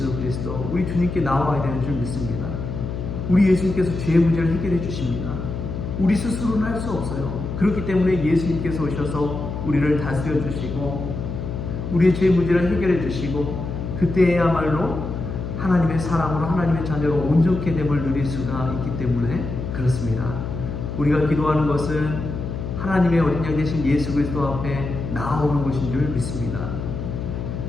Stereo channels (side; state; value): left; noise; hum, 5 dB below the sound